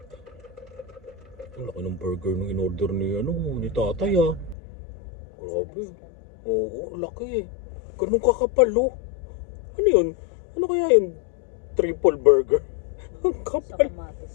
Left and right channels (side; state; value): right; drops out; at 4.5 s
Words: Ang laki ng burger nung in-order ni, ni tatay ah. Grabe. Oo, laki eh. Ganun kakapal oh. Ano yun? Ano kaya yun? Triple burger. Ang Sa kapal.